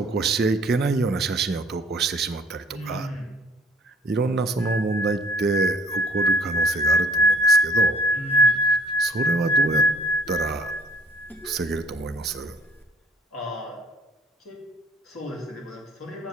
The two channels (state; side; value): normal; both; correlation 0.57